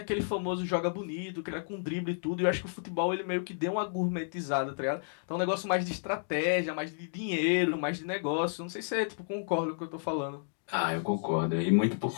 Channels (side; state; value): right; silent; digital silence